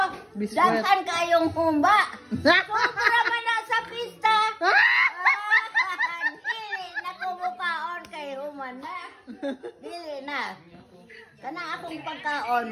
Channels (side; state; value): both; identical; correlation 1.00